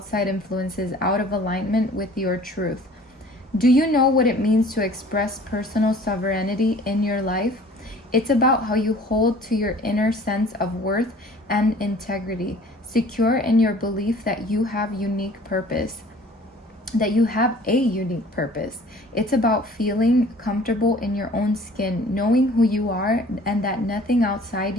influences out of alignment with your truth. Do you know what it means to express personal sovereignty in your life? It's about how you hold to your inner sense of worth and integrity, secure in your belief that you have unique purpose, that you have a unique purpose. It's about feeling comfortable in your own skin, knowing who you are and that nothing outside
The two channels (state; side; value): normal; both; correlation 0.50